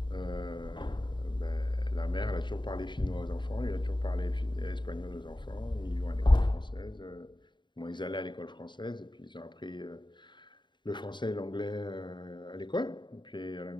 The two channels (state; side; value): late; right; 0.22 ms